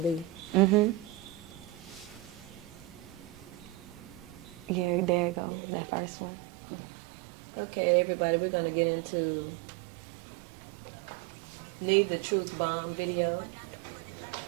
Mm-hmm. Yeah, there you go. There it That is. first one. Okay, everybody, we're going to get into Need the Truth Bomb video.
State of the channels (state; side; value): drops out; left; at 5.4 s